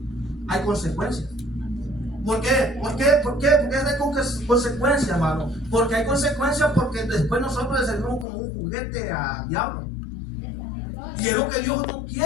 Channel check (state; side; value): drops out; right; at 8.2 s